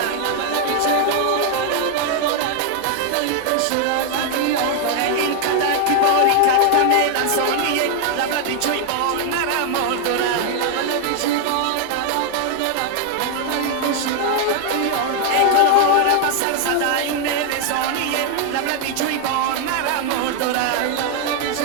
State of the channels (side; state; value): both; different; correlation 0.00